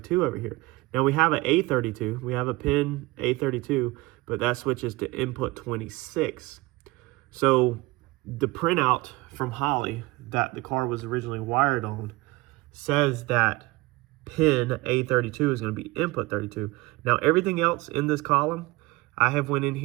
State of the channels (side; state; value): left; quieter; 21.7 dB